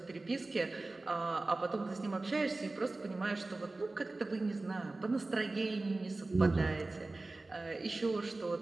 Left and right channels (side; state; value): left; quieter; 3.2 dB